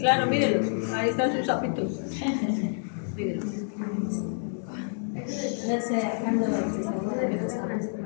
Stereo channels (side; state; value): right; silent; digital silence